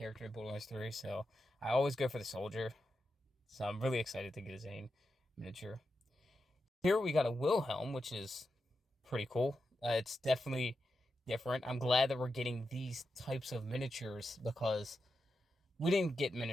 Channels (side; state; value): both; normal; correlation 0.88